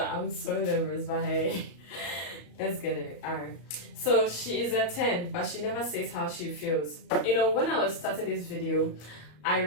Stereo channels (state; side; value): late; right; 34 ms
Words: I'm so nervous, but hey, let's get it. Alright, so she is a 10, but she never says how she feels. When I was starting this video, I